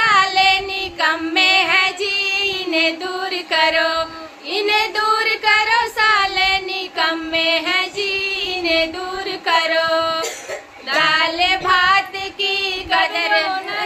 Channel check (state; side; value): identical; both; correlation 1.00